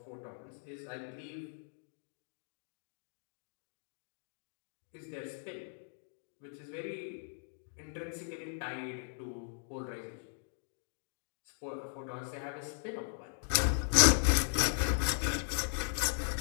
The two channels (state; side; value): silent; right; digital silence